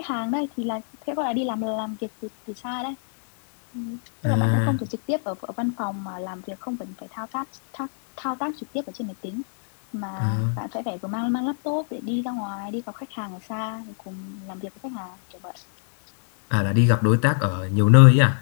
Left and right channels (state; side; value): silent; right; digital silence